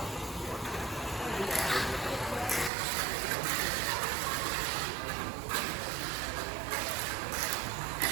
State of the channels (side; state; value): left; drops out; at 2.7 s